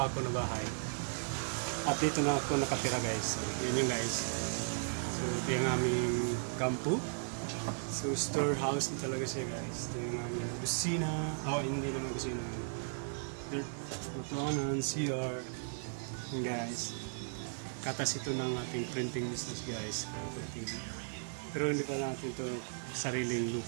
ko na bahay at dito na ako nakatira guys. So, yun yung guys, so ito yung aming kampo. So storehouse na talaga siya guys. Ito yung aming kusina, hindi naman kusina, lutuanan, CR yung guys. Katas ito ng ating printing business guys, pero hindi pa natin ito sariling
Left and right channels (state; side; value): silent; left; digital silence